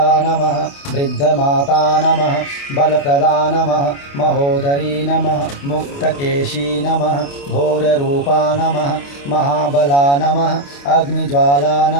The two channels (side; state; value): right; late; 28 ms